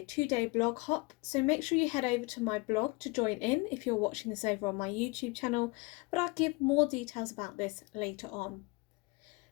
2-day blog hop, so make sure you head over to my blog to join in if you're watching this over on my YouTube channel, but I'll give more details about this later on.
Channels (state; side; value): quieter; right; 25.8 dB